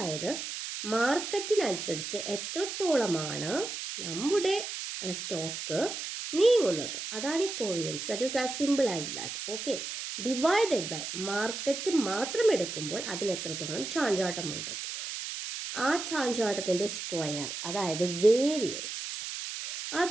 മാർക്കറ്റിനനുസരിച്ച് എത്രത്തോളമാണ് നമ്മുടെ സ്റ്റോക്ക് നീങ്ങുന്നത്, അതാണ് ഈ covariance. That is as simple as that. Okay, divided by market മാത്രം എടുക്കുമ്പോൾ അതിന് എത്രത്തോളം ചാഞ്ചാട്ടമുണ്ട്, ആ ചാഞ്ചാട്ടത്തിൻ്റെ സ്ക്വയർ, അതായത് വേരിയൻസ്. ആ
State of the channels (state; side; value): noise; right; hiss, 6 dB below the sound